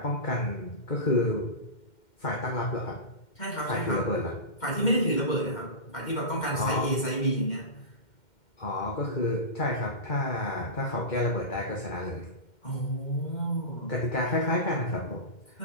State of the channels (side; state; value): right; late; 2.1 ms